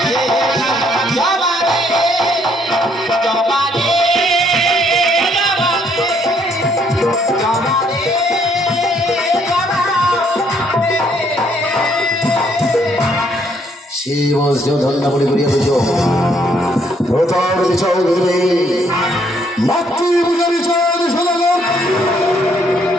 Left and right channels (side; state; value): both; normal; correlation 0.68